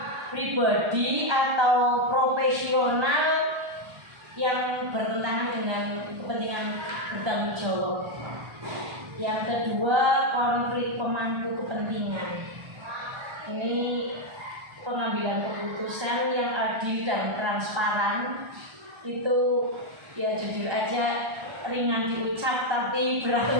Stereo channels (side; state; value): left; late; 1.3 ms